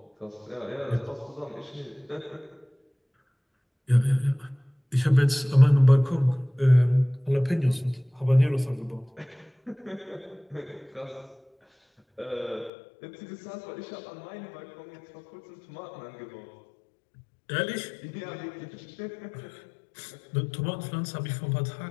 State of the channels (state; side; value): drops out; right; at 12.7 s